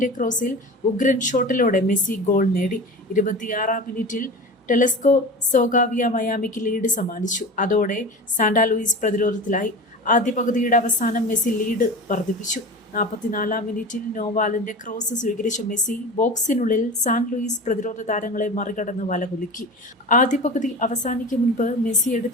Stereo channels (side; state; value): both; normal; correlation 0.32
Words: ക്രോസിൽ ഉഗ്രൻ ഷോട്ടിലൂടെ മെസ്സി ഗോൾ നേടി. 26-ാം മിനിറ്റിൽ ടെലസ്കോ സോഗാവിയ മയാമിക്ക് ലീഡ് സമ്മാനിച്ചു. അതോടെ സാന്റാ ലൂയിസ് പ്രതിരോധത്തിലായി. ആദ്യ പകുതിയുടെ അവസാനം മെസ്സി ലീഡ് വർദ്ധിപ്പിച്ചു. 44-ാം മിനിറ്റിൽ നോവാലിന്റെ ക്രോസ് സ്വീകരിച്ച മെസ്സി ബോക്സിനുള്ളിൽ സാൻ ലൂയിസ് പ്രതിരോധ താരങ്ങളെ മറികടന്ന് വലകുലുക്കി. ആദ്യ പകുതി അവസാനിക്കും മുൻപ് മെസ്സി